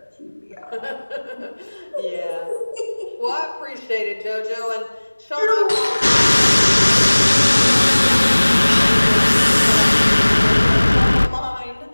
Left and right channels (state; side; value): inverted; both; correlation -1.00